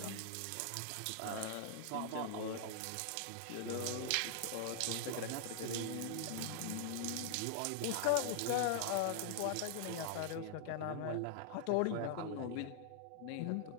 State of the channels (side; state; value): both; different; correlation -0.01